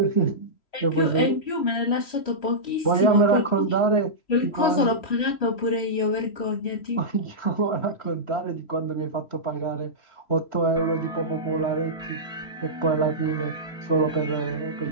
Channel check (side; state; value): right; late; 3.0 ms